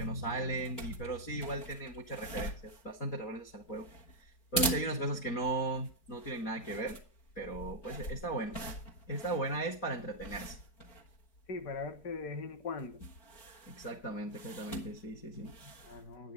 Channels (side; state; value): right; late; 4.7 ms